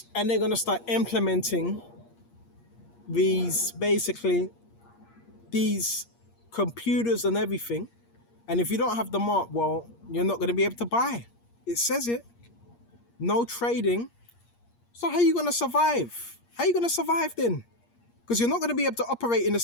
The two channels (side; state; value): right; late; 8.5 ms